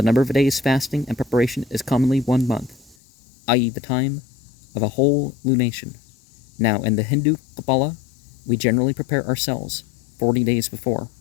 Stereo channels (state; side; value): drops out; right; at 3.0 s